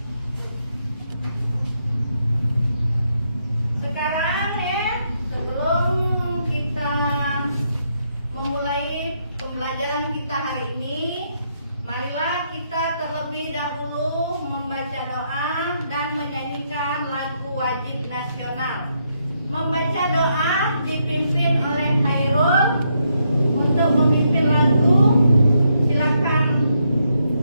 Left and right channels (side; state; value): both; inverted; correlation -0.78